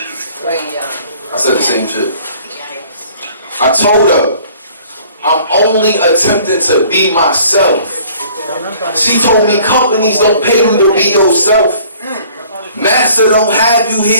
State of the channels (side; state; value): both; inverted; correlation -0.54